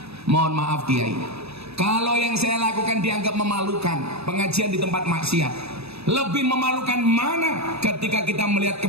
Mohon maaf Kiai, kalau yang saya lakukan dianggap memalukan, pengajian di tempat maksiat. Lebih memalukan mana ketika kita melihat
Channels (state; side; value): late; left; 0.79 ms